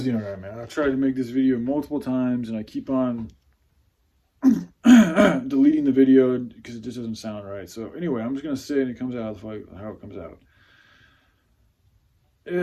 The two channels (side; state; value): both; identical; correlation 1.00